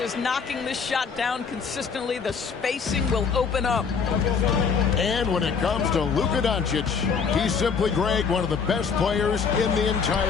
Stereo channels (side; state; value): right; quieter; 5.9 dB